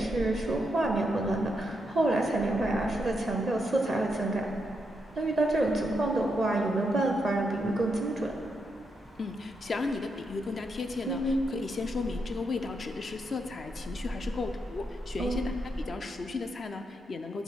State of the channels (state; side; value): normal; both; correlation 0.82